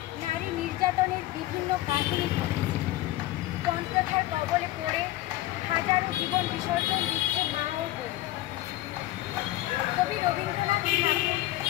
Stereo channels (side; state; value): right; quieter; 16.2 dB